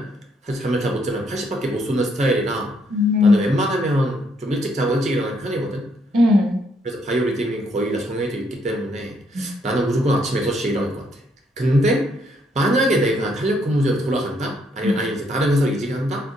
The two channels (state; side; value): normal; both; correlation 0.71